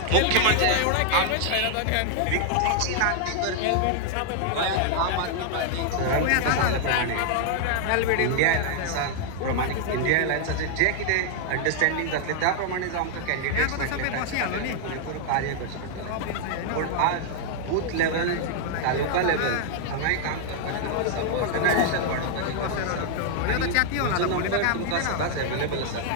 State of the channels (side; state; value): both; different; correlation 0.00